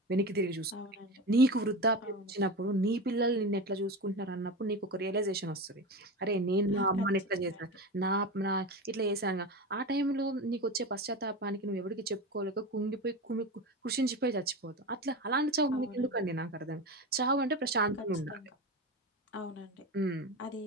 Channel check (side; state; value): both; normal; correlation 0.24